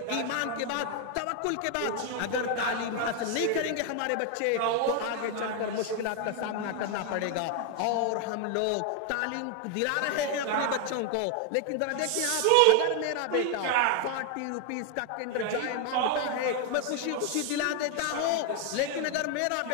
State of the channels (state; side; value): different; both; correlation 0.00